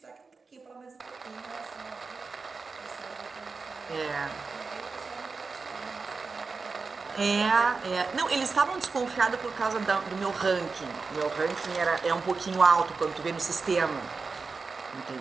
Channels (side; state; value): left; quieter; 4.5 dB